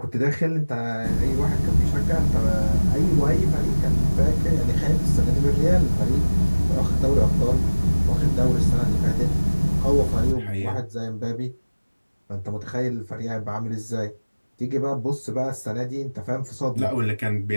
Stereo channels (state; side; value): inverted; both; correlation -1.00